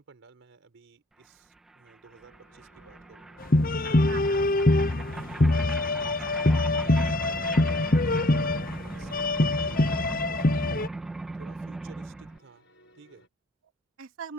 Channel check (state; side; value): normal; both; correlation 0.61